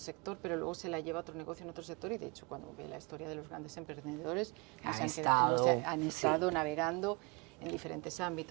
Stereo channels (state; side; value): quieter; left; 29.3 dB